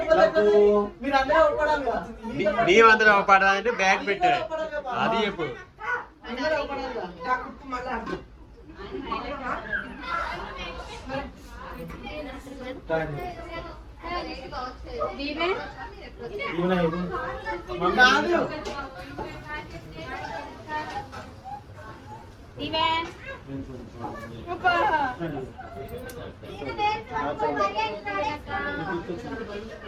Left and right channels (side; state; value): both; identical; correlation 1.00